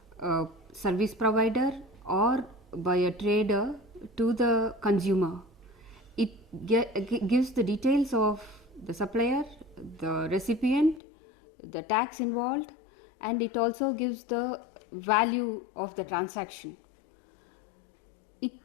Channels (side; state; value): right; drops out; at 11.0 s